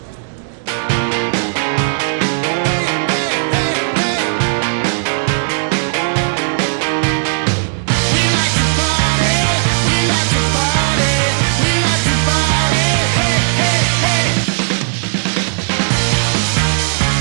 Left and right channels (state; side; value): silent; left; digital silence